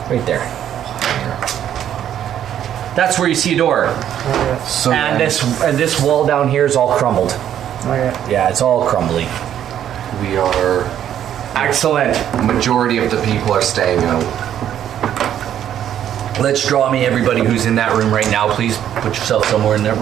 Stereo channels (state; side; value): quieter; left; 10.4 dB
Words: right there. That's where you see a door. Okay. So And then this wall down here is all crumbled. Okay. Yeah, it's all crumbly. we are. Excellent. Majority of the people are staying out. Let's draw me everybody who's in that room right now, please. Put yourself somewhere in that